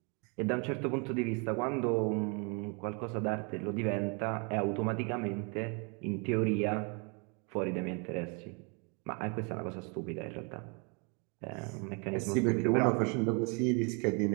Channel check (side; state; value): left; quieter; 34.3 dB